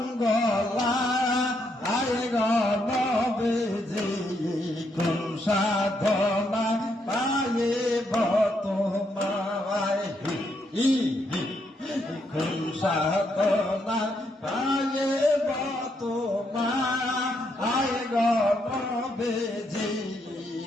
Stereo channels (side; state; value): both; normal; correlation 0.77